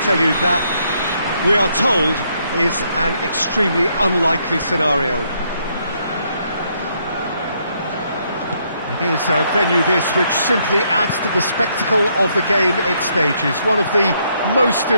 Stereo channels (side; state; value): both; inverted; correlation -0.73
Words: tell you that we are told is an extremely unlikely scenario. It is a venue this which simply adds to the spectacle of the game it stages. One of the most